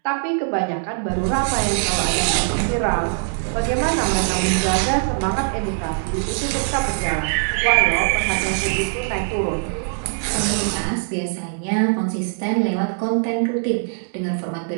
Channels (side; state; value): left; silent; 64 dB below the other